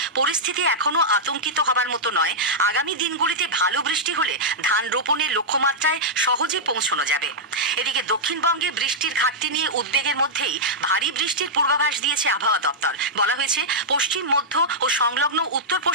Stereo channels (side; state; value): both; normal; correlation -0.08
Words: পরিস্থিতি এখনো আতঙ্কিত হবার মতো নয়। আগামী দিনগুলিতে ভালো বৃষ্টি হলে ধান রোপণের লক্ষ্যমাত্রায় সহজে পৌঁছানো যাবে। এদিকে দক্ষিণবঙ্গে বৃষ্টির ঘাটতি নিয়ে উদ্বেগের মধ্যেই ভারী বৃষ্টির পূর্বাভাস দিয়েছে আবহাওয়া দপ্তর। বলা হয়েছে, পশ্চিম, মধ্য ও সংলগ্ন উত্তর